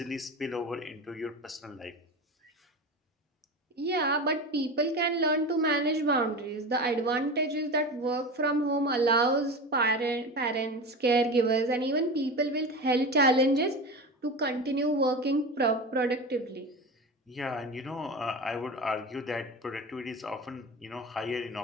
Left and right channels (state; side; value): normal; both; correlation 0.27